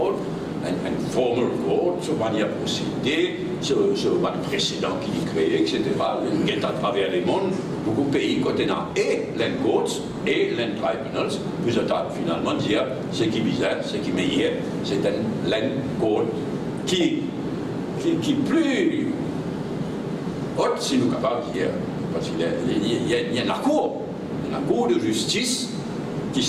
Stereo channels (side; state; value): both; identical; correlation 1.00